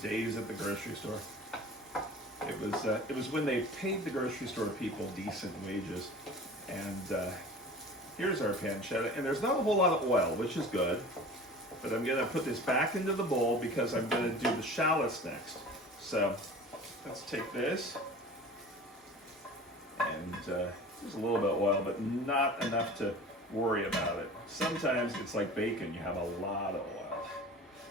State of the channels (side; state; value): both; normal; correlation 0.40